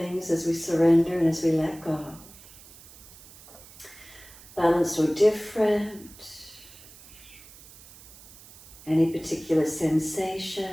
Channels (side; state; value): right; noise; hiss, 21 dB below the sound